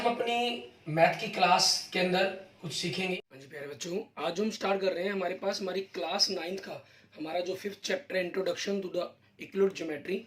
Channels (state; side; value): identical; both; correlation 1.00